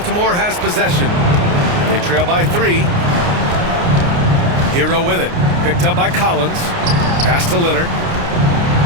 has possession. They trail by 3. Hero with it. Picked up by Collins. Pass to Leonard.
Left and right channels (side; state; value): left; late; 29 ms